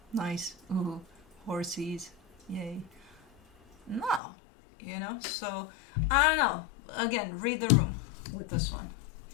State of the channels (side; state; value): right; drops out; at 4.2 s